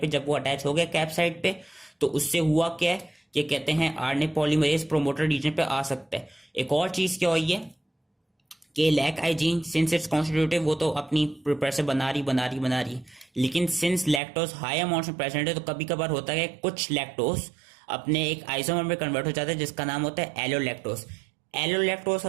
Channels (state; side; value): drops out; left; at 14.2 s